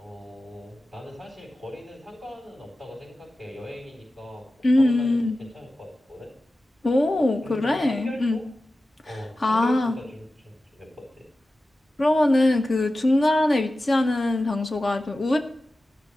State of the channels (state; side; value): normal; both; correlation 0.94